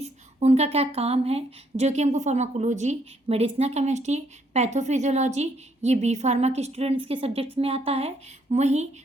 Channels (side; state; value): both; normal; correlation 0.71